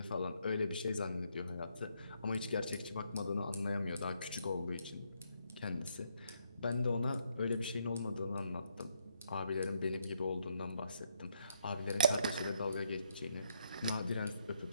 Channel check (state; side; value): inverted; both; correlation -0.75